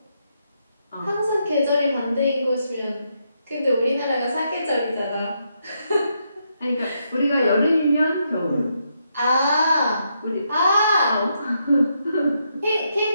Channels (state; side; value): inverted; both; correlation -0.79